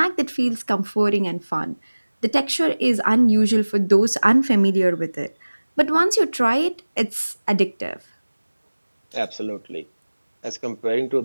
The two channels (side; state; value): both; inverted; correlation -1.00